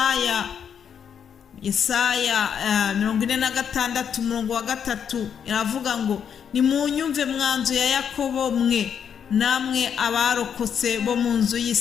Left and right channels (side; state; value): right; quieter; 7.9 dB